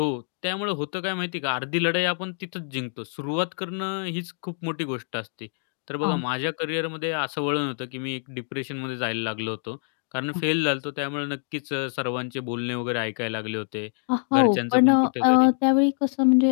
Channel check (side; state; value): right; silent; digital silence